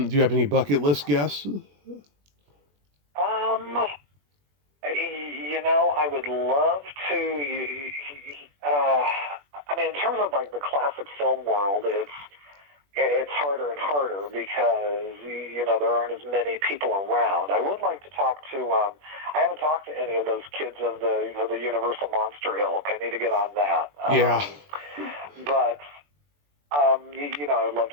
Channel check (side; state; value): left; late; 21 ms